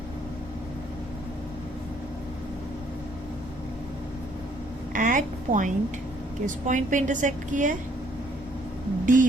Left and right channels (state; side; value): normal; both; correlation 0.65